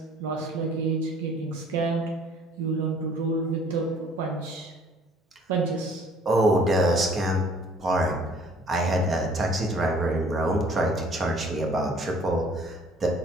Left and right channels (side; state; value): both; normal; correlation 0.55